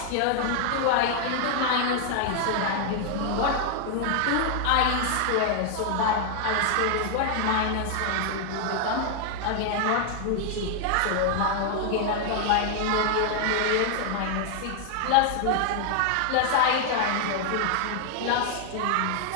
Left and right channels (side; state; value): both; different; correlation 0.00